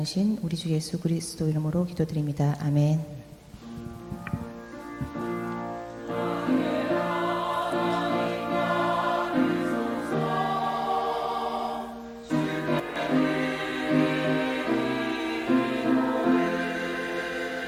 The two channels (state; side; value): identical; both; correlation 1.00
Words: 우리 주 예수 그리스도 이름으로 기도드립니다. 아멘.